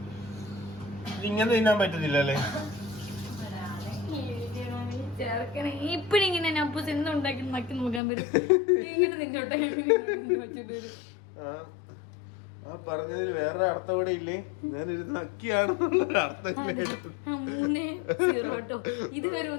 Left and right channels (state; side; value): drops out; right; at 8.0 s